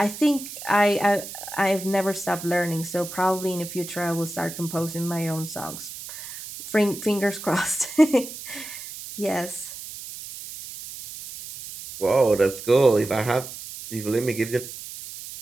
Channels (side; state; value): right; noise; hiss, 11 dB below the sound